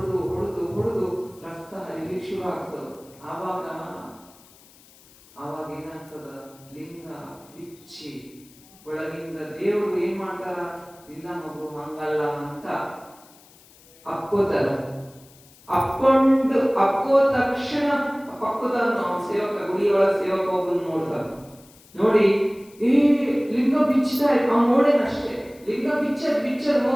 ಹೊಡೆದು ಹೊಡೆದು ರಕ್ತ ಹರಿಲಿಕ್ಕೆ ಶುರು ಆಗ್ತದ. ಆವಾಗ ಏನಾಗ್ತದ? ಲಿಂಗ ಬಿಚ್ಚಿ ಒಳಗಿಂದ ದೇವರು ಏನ್ ಮಾಡ್ತಾರ? ಇಲ್ಲ ಮಗು ಹಂಗಲ್ಲ ಅಂತ ಅಕ್ಕೋತಾರ. ಅಕ್ಕೋ ತಕ್ಷಣ ಪಕ್ಕದ ಸೇವಕ, ಗುಡಿಯೊಳಗ ಸೇವಕ ಒಬ್ಬನ್ ನೋಡ್ತಾರ. ನೋಡಿ ಲಿಂಗ ಬಿಚ್ಚತಾ ಅವ್ ನೋಡೇನಷ್ಟೇ. ಲಿಂಗ ಬಿಚ್ಚರ್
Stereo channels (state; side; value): noise; left; hiss, 26 dB below the sound